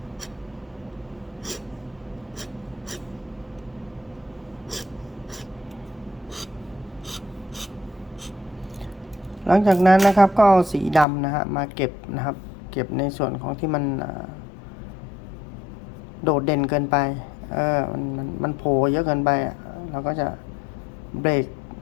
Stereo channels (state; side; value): drops out; right; at 11.1 s